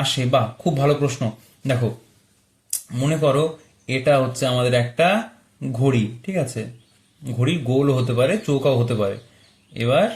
আসে? বা খুব ভালো প্রশ্ন। দেখো, মনে করো এটা হচ্ছে আমাদের একটা ঘড়ি, ঠিক আছে, ঘড়ি গোল হতে পারে, চৌকাও হতে পারে। এবার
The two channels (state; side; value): identical; both; correlation 1.00